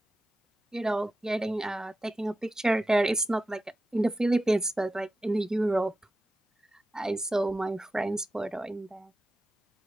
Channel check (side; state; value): both; normal; correlation 0.92